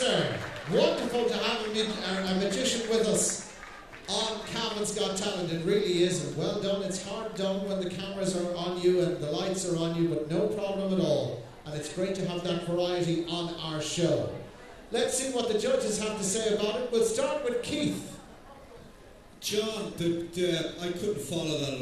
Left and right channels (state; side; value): identical; both; correlation 1.00